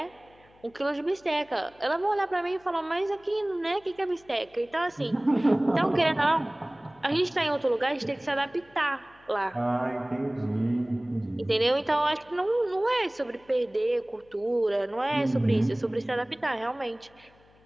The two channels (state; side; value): noise; left; hum, 30 dB below the sound